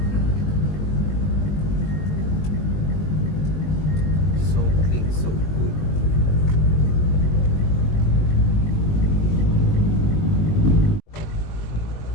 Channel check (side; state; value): right; late; 20 ms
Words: So clean, so good.